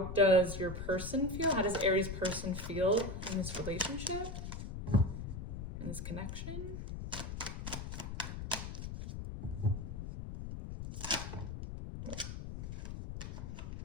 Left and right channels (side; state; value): left; noise; rumble, 6 dB below the sound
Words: does your person feel? How does Aries person feel in this relationship, in this connection?